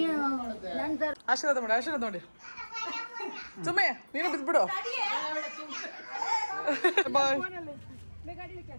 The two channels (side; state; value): both; inverted; correlation -1.00